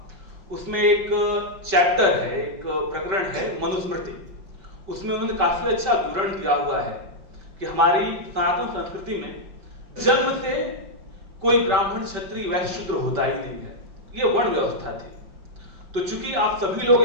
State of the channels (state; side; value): late; left; 5.2 ms